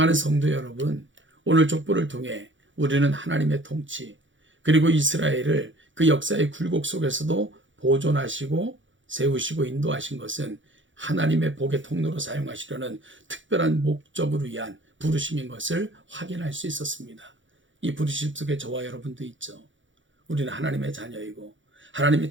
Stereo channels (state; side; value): late; left; 0.56 ms